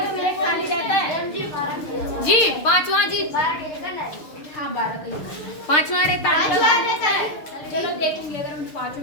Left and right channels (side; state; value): right; late; 6.6 ms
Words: ब्रेक खाली रहता है जी 5वां जी। हाँ 12 का ही 5वां रहता है। चलो देखूंगी, अगर मुझे 5